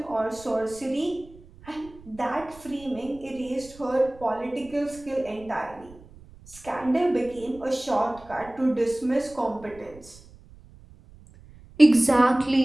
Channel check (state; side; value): noise; right; rumble, 22 dB below the sound